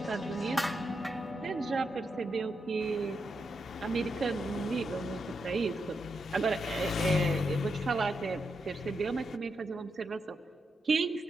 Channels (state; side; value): normal; both; correlation 0.84